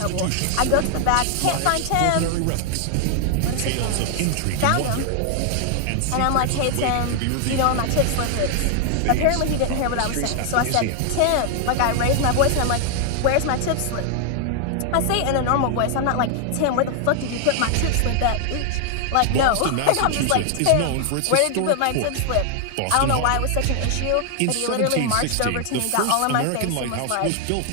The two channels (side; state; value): both; different; correlation 0.00